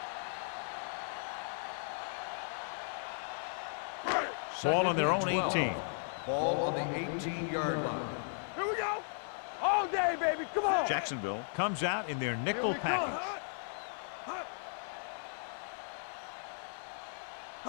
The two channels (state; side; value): silent; right; 54 dB below the other